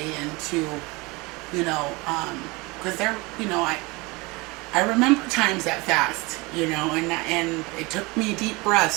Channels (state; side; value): quieter; left; 24.9 dB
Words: into, you know, because they're, you know, I remember times that fast, you know, and it took me deep